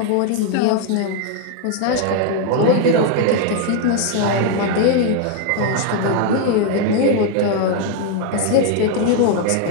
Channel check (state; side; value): different; both; correlation 0.00